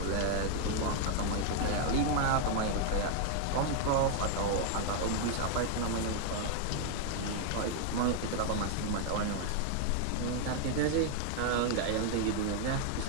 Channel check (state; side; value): different; both; correlation 0.00